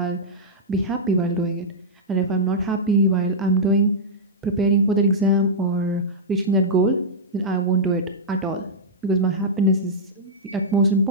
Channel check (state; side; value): normal; both; correlation -0.10